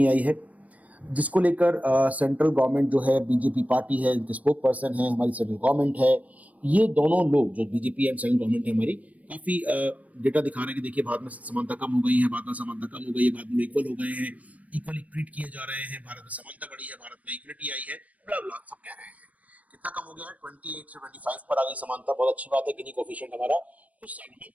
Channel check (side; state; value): left; late; 0.069 ms